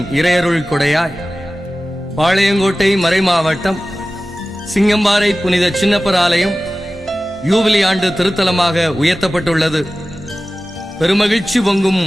இறையருள் கொடையாய் பாளையங்கோட்டை மறைமாவட்டம் சிங்கம்பாறை புனித சின்னப்பர் ஆலயம் யூபிலி ஆண்டு திருத்தலமாக உயர்த்தப்பட்டுள்ளது. பெருமகிழ்ச்சி பொங்கும்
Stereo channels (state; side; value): normal; both; correlation 0.96